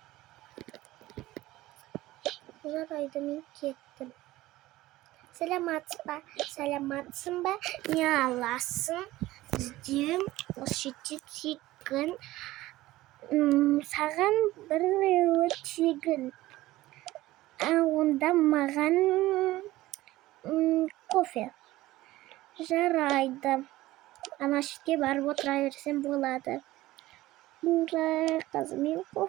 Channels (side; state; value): left; quieter; 17.2 dB